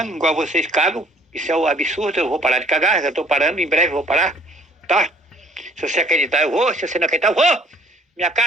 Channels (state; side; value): normal; both; correlation 0.58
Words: igual vocês cagam, isso é um absurdo, eu vou parar de cagar, já estou parando, em breve eu vou parar, tá? Se você acreditar, eu vou. Se você não acreditar, eu vou. Minha